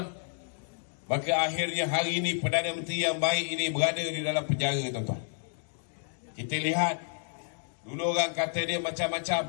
maka akhirnya hari ini Perdana Menteri yang baik ini berada di dalam penjara tuan-tuan. Kita lihat, dulu orang kata dia macam-macam,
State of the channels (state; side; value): silent; right; 58 dB below the other